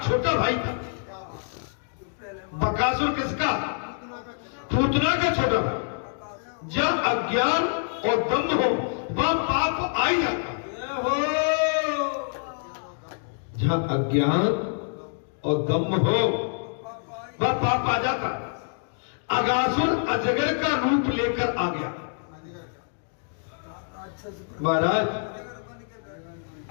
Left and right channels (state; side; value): silent; right; digital silence